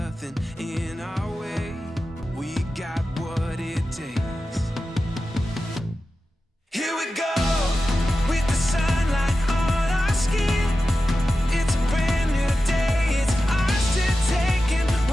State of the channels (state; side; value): normal; both; correlation 0.93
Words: in our way. We got what it takes. Here we go with the sunlight on our skin. It's a brand new day, it's ours to take, and